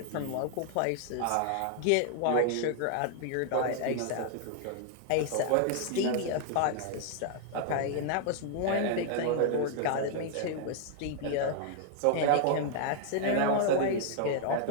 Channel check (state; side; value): different; both; correlation 0.00